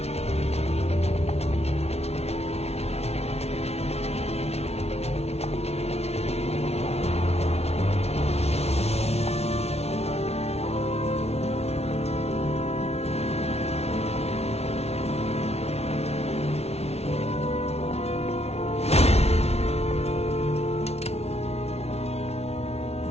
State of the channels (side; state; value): right; late; 0.31 ms